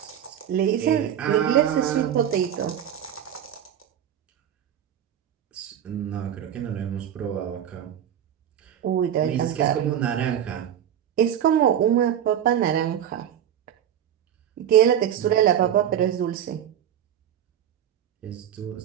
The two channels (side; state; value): left; quieter; 10.0 dB